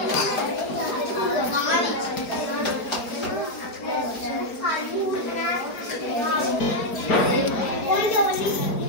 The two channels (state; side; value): late; right; 4.7 ms